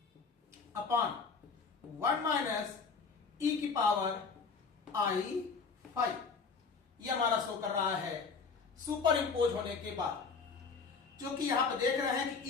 upon 1 minus e की पावर आई फाइव। ये हमारा शो कर रहा है सुपर इंपोज होने के बाद, जो कि यहां पर देख रहे हैं कि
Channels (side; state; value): right; quieter; 5.1 dB